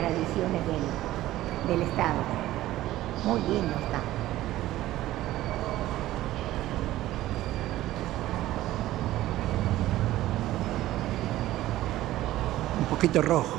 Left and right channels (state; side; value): quieter; left; 15.2 dB